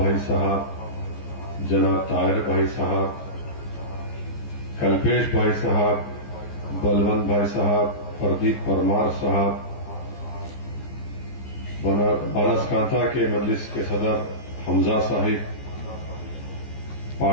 साहब, जनाब ताहिर भाई साहब, कल्पेश भाई साहब, बलवंत भाई साहब, प्रदीप परमार साहब, बनासकांठा के मजलिस के सदर हमजा साहिब,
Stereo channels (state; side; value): late; right; 14 ms